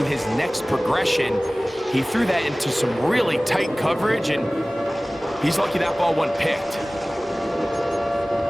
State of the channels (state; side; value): normal; both; correlation 0.98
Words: his next progression. He threw that into some really tight coverage, and he's lucky that ball wasn't picked.